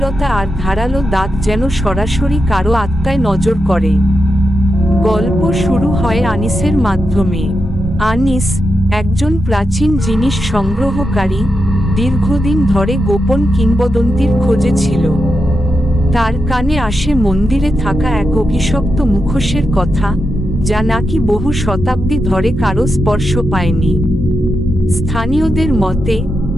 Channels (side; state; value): both; normal; correlation 0.87